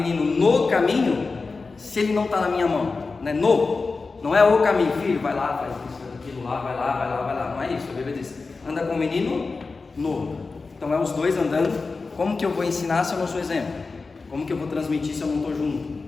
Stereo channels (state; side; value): quieter; right; 4.1 dB